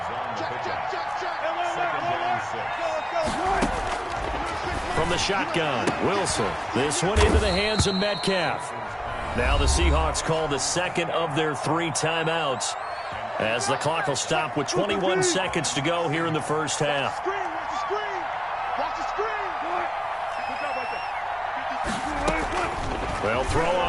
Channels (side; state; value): both; identical; correlation 1.00